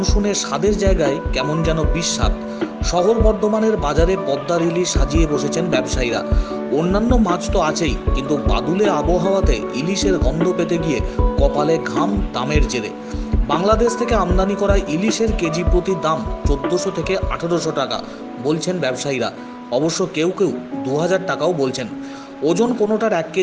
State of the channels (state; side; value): identical; both; correlation 1.00